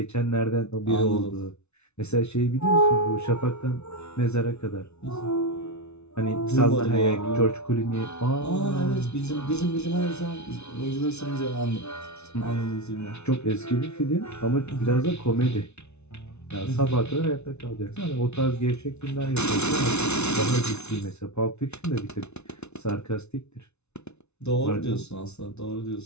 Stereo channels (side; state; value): right; late; 0.81 ms